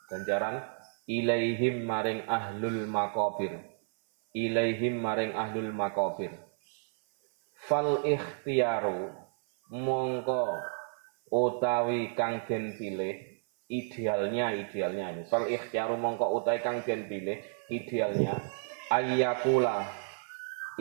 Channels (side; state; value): left; silent; 57 dB below the other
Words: ganjaran ilaihim maring ahlul maqabir. Ilaihim maring ahlul maqabir. Fal ikhtiyaru mongko utawi kang den pilih idealnya ini. Fal ikhtiyaru mongko utawi kang den pilih idealnya ayyakula